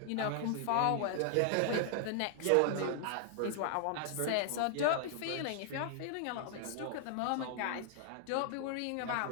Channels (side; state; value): both; different; correlation -0.01